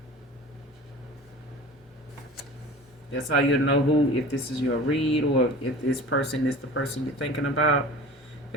That's how you know if this is your read, or if this person is the person you're thinking about.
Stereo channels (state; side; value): normal; both; correlation 0.38